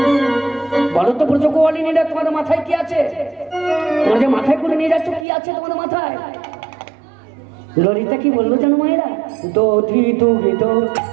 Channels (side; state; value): left; drops out; at 5.2 s